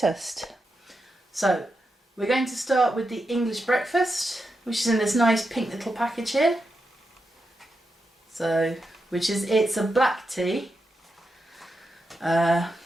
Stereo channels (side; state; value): both; normal; correlation 0.87